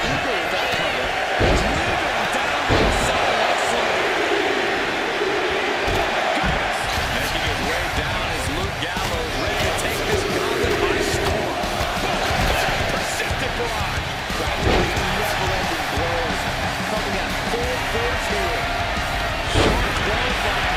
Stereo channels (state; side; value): identical; both; correlation 1.00